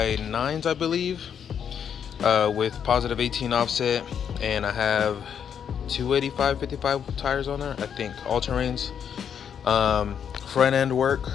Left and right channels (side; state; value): right; quieter; 8.0 dB